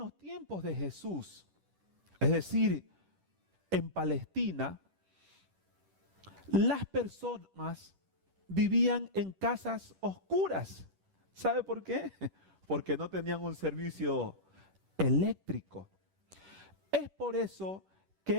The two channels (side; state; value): left; late; 10 ms